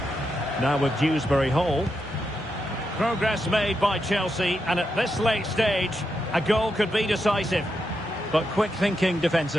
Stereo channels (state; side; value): normal; both; correlation 0.84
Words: Now with Dewsbury Hall. Progress made by Chelsea, and at this late stage, a goal could be decisive. But quick thinking